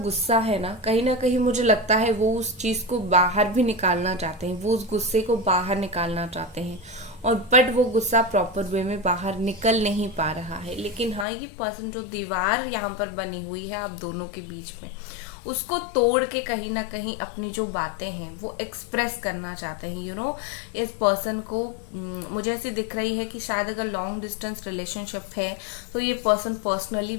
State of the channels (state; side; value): drops out; right; at 11.2 s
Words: है ना कहीं मुझे लगता है वो उस चीज को बाहर भी निकालना चाहते हैं, वो उस गुस्से को बाहर निकालना चाहते हैं। और बट वो गुस्सा प्रॉपर वे में बाहर निकल नहीं पा रहा है। लेकिन हाँ, ये पर्सन जो दीवार यहाँ पर बनी हुई है आप दोनों के बीच में, उसको तोड़ के कहीं ना कहीं अपनी जो बातें हैं वो एक्सप्रेस करना चाहते हैं। इस पर्सन को मुझे ऐसी दिख रही है कि शायद अगर लॉन्ग डिस्टेंस रिलेशनशिप है तो ये पर्सन पर्सनली